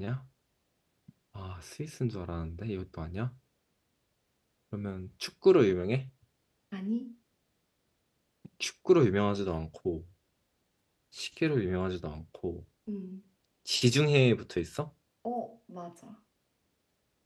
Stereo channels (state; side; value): identical; both; correlation 1.00